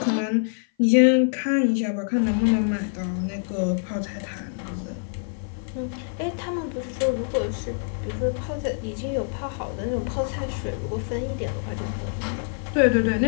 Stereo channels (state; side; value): silent; right; 56 dB below the other